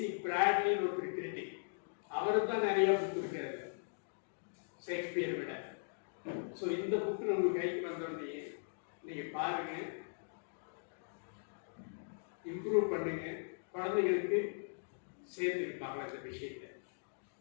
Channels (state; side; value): silent; right; digital silence